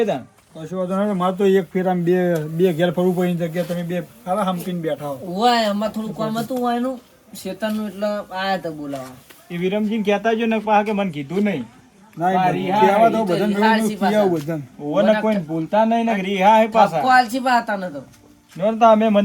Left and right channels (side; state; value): both; identical; correlation 1.00